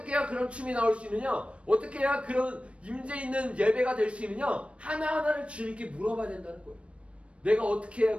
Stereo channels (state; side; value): late; left; 0.061 ms